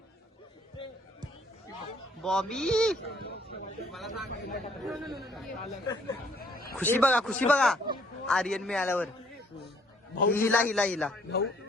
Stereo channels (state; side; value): normal; both; correlation 0.63